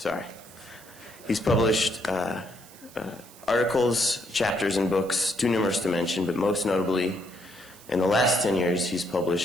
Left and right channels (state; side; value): noise; right; hiss, 22 dB below the sound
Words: He's published articles, chapters, and books, too numerous to mention, but most notably, in the last 10 years, he's